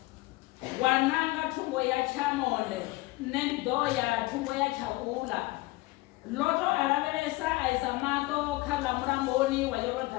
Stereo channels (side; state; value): right; quieter; 21.1 dB